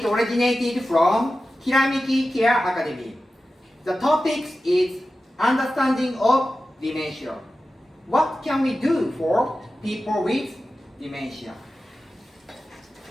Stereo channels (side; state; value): both; normal; correlation 0.94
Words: originated from Kiramiki Care Academy. The topic is understanding of dementia. What can we do for people with dementia?